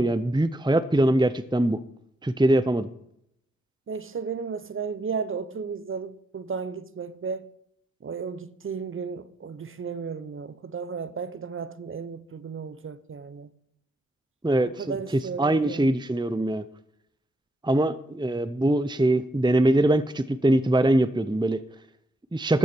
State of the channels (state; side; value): normal; both; correlation 0.80